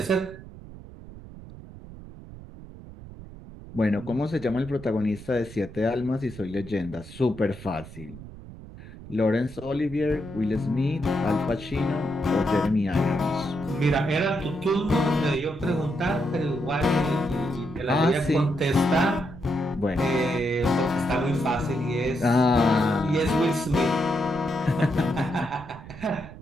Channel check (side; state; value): right; noise; rumble, 15 dB below the sound